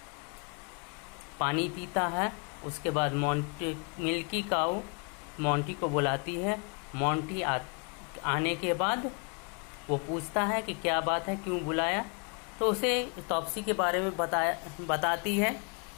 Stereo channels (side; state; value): right; quieter; 36.2 dB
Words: पानी पीता है। उसके बाद मिल्की काऊ मोंटी को बुलाती है। मोंटी आने के बाद वो पूछता है कि क्या बात है, क्यों बुलाया। तो उसे टॉप्सी के बारे में बताती है